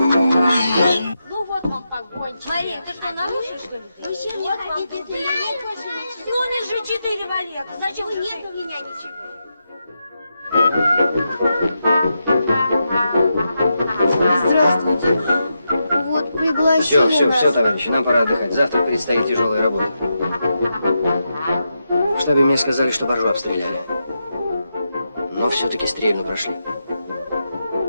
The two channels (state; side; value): inverted; both; correlation -0.86